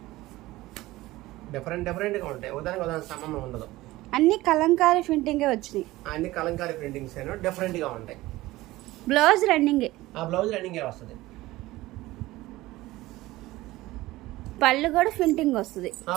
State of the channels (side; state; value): left; quieter; 18.1 dB